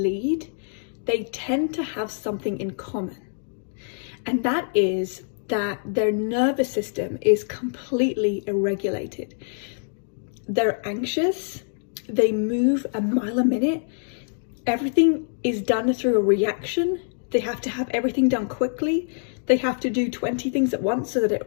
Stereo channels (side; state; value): right; silent; digital silence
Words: they tend to have something in common. And that is that their nervous system is completely irregulated. They're anxious, they move a mile a minute, everything is done through a reaction. They have to have everything done quickly. They have to do 20 things at once so that it